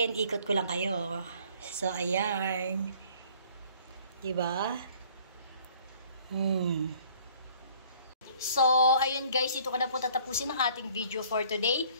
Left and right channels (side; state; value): both; inverted; correlation -0.56